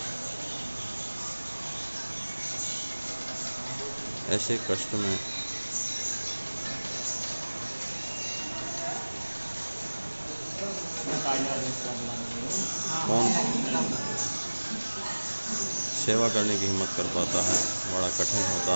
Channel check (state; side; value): inverted; both; correlation -1.00